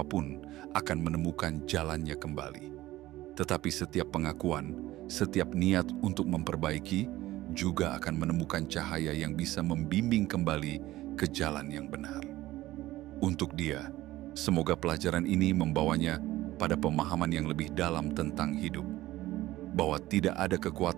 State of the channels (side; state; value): left; quieter; 16.4 dB